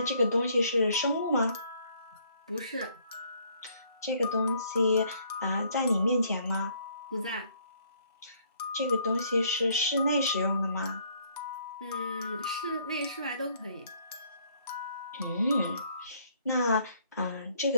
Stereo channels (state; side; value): inverted; both; correlation -0.65